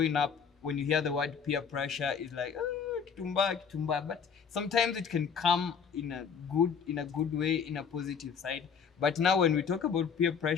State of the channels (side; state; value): right; quieter; 6.6 dB